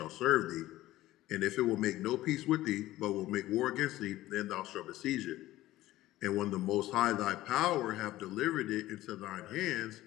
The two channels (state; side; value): quieter; right; 15.9 dB